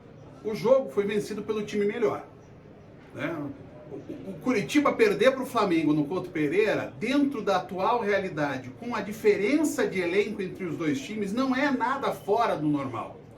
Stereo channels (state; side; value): identical; both; correlation 1.00